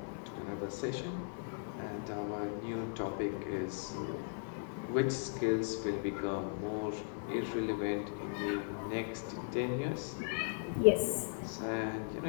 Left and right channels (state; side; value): silent; right; 53 dB below the other